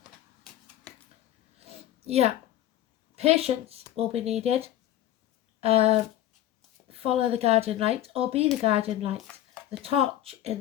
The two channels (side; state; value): right; quieter; 12.6 dB